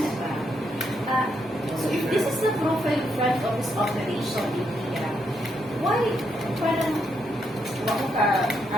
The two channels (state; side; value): normal; both; correlation 0.78